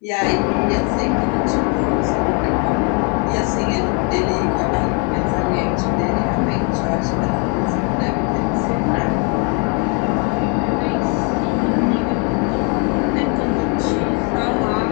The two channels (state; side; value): quieter; right; 36.0 dB